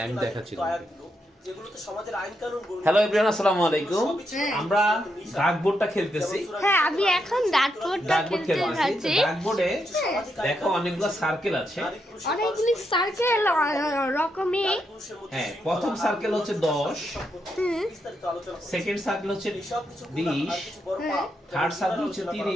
আমি দেখাচ্ছি আয়াতগুলো যেগুলোতে সমাজের আইন কানুন বর্ণিত। হ্যালো এভরিওয়ান, আসসালামু আলাইকুম। আমরা ডাকবোর্ডটা খেলতেছি। হ্যাঁ, আমি এখন ডাকবোর্ডটা খেলতে যাচ্ছি। ডাকবোর্ডে দেখো অনেকগুলো সার্কেল আছে। অনেকগুলি সার্কেল রকমে। হ্যাঁ, প্রথম সার্কেল হচ্ছে 10, সেকেন্ড সার্কেল হচ্ছে 20, থার্ড সার্কেল হচ্ছে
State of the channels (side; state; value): both; normal; correlation 0.81